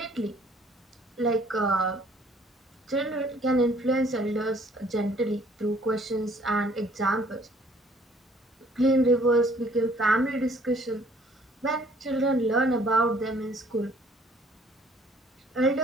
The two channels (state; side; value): normal; both; correlation 0.59